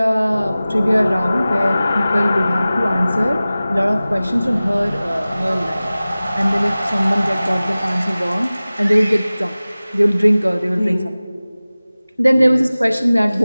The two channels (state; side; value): inverted; both; correlation -0.97